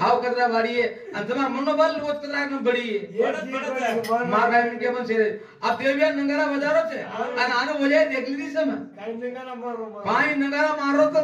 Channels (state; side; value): identical; both; correlation 1.00